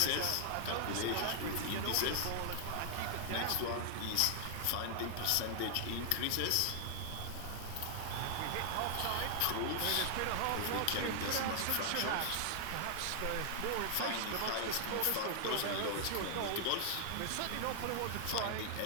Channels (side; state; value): both; different; correlation 0.00